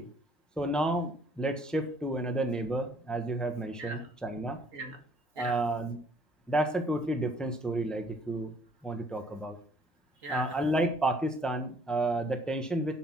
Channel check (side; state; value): both; normal; correlation 0.61